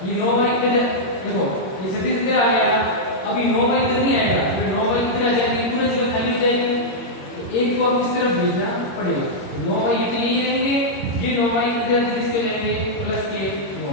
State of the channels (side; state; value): right; late; 21 ms